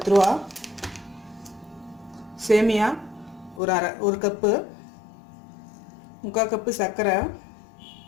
ரூபா. சேமியா ஒரு கப்பு, 3/4 கப்பு சர்க்கரை,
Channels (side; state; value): right; drops out; at 3.6 s